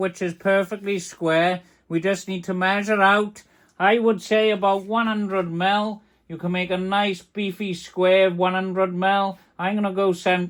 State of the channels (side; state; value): both; identical; correlation 1.00